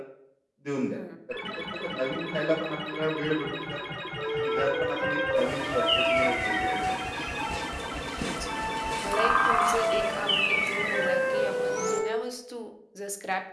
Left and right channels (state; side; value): identical; both; correlation 1.00